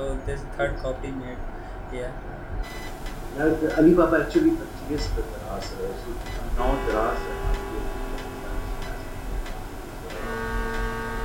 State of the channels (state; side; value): identical; both; correlation 1.00